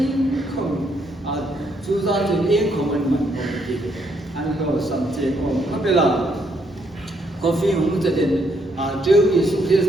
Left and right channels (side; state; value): both; normal; correlation 0.73